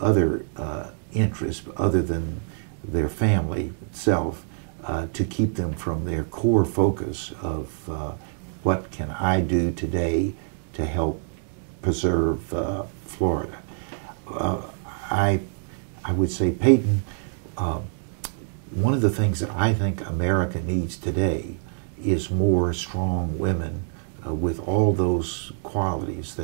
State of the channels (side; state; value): left; silent; 61 dB below the other